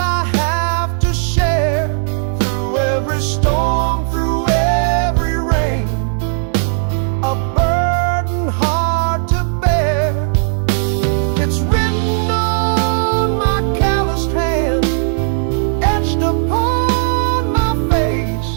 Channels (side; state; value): left; silent; digital silence